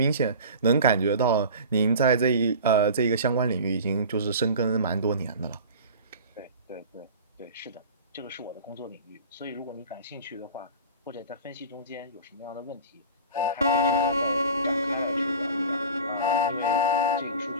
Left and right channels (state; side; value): inverted; both; correlation -0.37